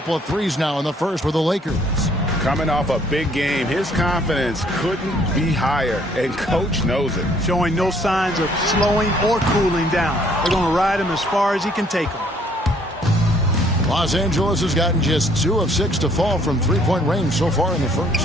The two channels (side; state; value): both; normal; correlation 0.63